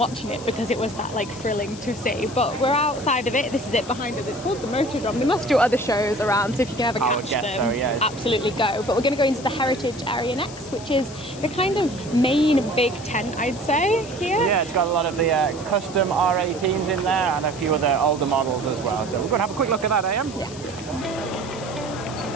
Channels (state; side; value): noise; left; hiss, 16 dB below the sound